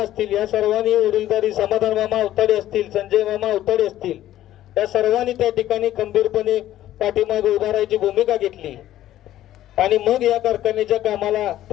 या सर्वांनी वडीलधारी समाधान मामा अवताडे असतील, संजय मामा अवताडे असतील, या सर्वांनी त्या ठिकाणी खंबीरपणे पाठीमागे उभारायची भूमिका घेतली आणि मग या कारखान्याच्या कामाला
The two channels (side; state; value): right; quieter; 13.3 dB